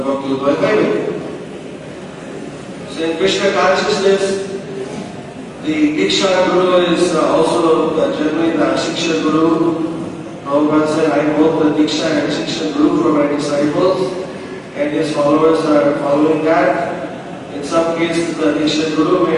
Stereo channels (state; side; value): identical; both; correlation 1.00